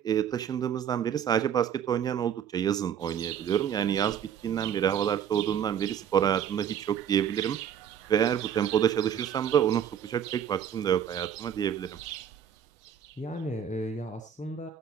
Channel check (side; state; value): left; quieter; 8.8 dB